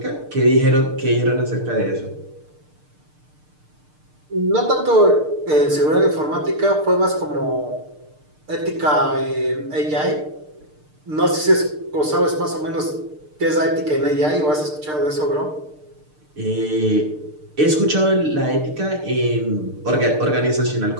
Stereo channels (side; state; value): left; late; 6.6 ms